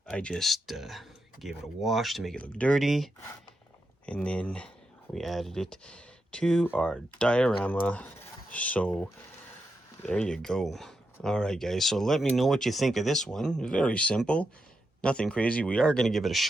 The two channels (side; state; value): both; normal; correlation 0.86